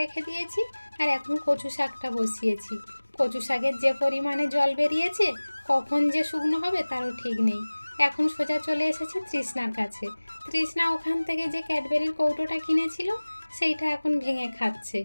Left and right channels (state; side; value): inverted; both; correlation -1.00